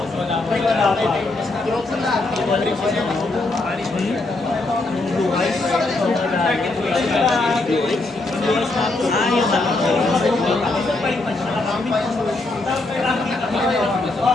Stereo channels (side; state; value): right; quieter; 3.0 dB